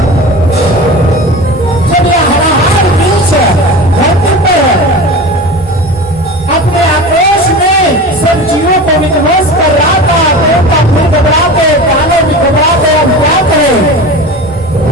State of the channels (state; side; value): normal; both; correlation 0.32